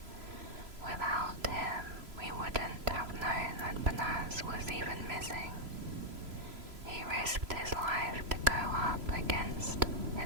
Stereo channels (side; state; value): left; late; 3.0 ms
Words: "Without him, we wouldn't have known that Banaz was even missing. He risked his life to go up against